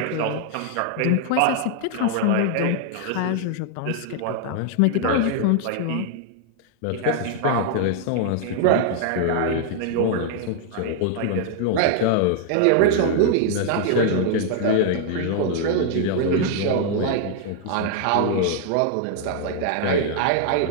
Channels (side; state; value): both; different; correlation 0.00